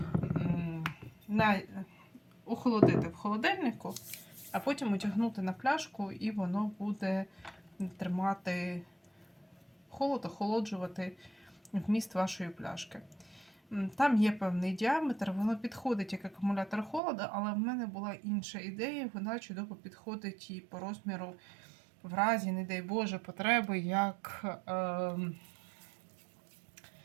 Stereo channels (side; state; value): left; drops out; at 17.0 s